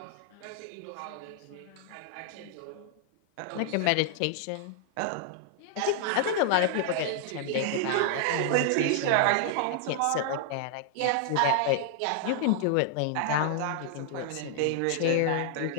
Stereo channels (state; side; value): different; both; correlation -0.01